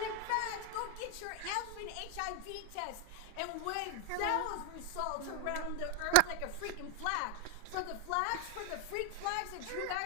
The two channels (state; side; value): different; both; correlation 0.01